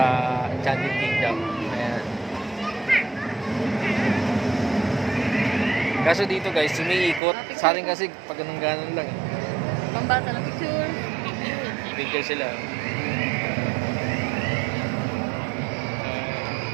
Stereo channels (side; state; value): left; drops out; at 7.2 s